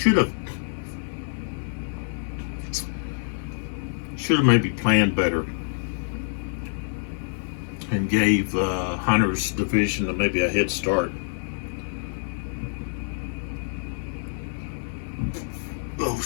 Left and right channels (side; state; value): right; silent; digital silence